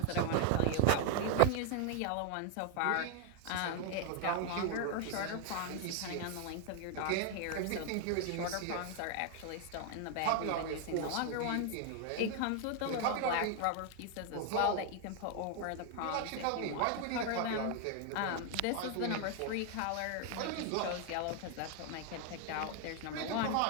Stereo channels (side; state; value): both; different; correlation 0.00